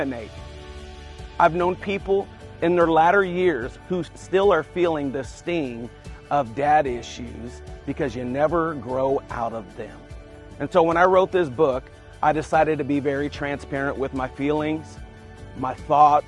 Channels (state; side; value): identical; both; correlation 1.00